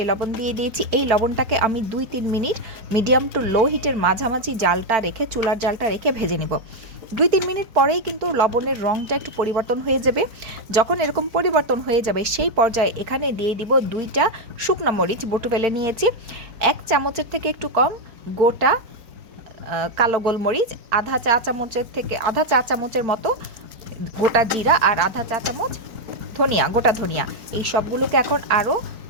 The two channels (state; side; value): late; left; 4.5 ms